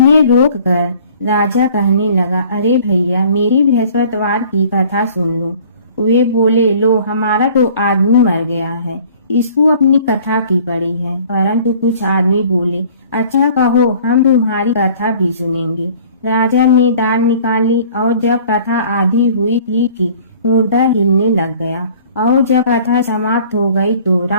रोक कर राजा कहने लगा, अरे भैया, मेरी बृहस्पतिवार की कथा सुन लो। वे बोले, लो, हमारा तो आदमी मर गया है, इसको अपनी कथा की पड़ी है। परंतु कुछ आदमी बोले, अच्छा कहो, हम तुम्हारी कथा भी सुनेंगे। राजा ने दाल निकाली और जब कथा आधी हुई थी कि मुर्दा हिलने लग गया, और जब कथा समाप्त हो गई तो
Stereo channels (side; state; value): both; inverted; correlation -0.52